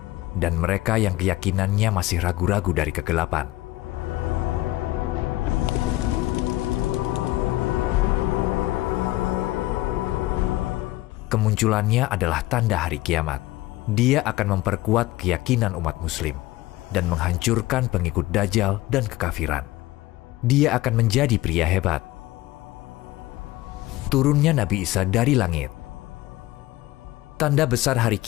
dan mereka yang keyakinannya masih ragu-ragu dari kegelapan. Kemunculannya adalah tanda hari kiamat. Dia akan memperkuat keyakinan umat muslim dan menghancurkan pengikut Dajjal dan kekafiran. Dia akan menjadi pria hebat. Turunnya Nabi Isa dari langit. Tanda besar hari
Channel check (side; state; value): right; quieter; 17.7 dB